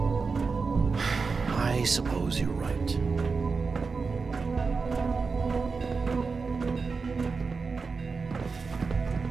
I suppose you're right.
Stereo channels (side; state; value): left; quieter; 4.7 dB